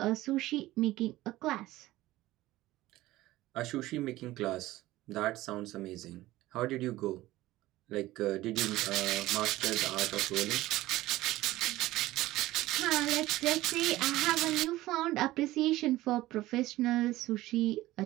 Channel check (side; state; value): left; quieter; 16.9 dB